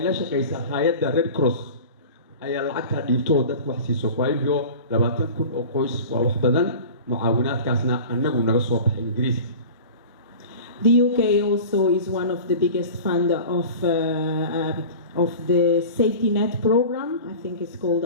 كيسا هيدا ريد كروس أي العكس ديبتو ده وحسي سوكوايليو لما تكون أقوس ووحدنا معاونات كاسنا أننا نرسوا بإنجليزي. The UK also is one of the biggest funder of the safety net program. I think it's called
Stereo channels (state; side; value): inverted; both; correlation -0.37